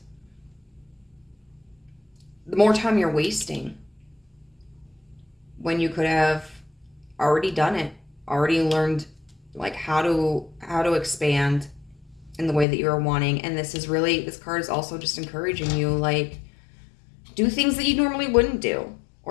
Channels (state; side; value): drops out; right; at 12.7 s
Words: the more time you're wasting when you could have already done it, already learned like how to expand in the way that you're wanting. And this card is also just encouraging you, like, do things that you normally wouldn't do,